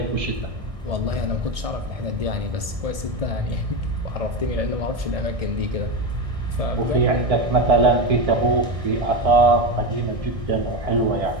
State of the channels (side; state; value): left; late; 1.6 ms